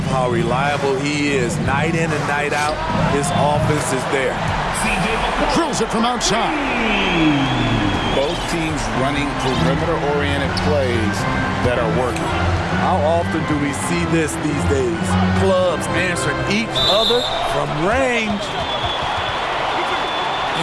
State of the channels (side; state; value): both; identical; correlation 1.00